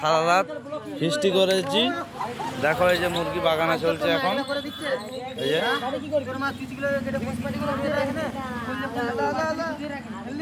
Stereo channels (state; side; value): identical; both; correlation 1.00